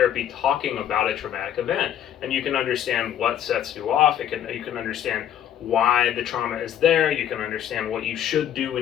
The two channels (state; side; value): quieter; right; 10.4 dB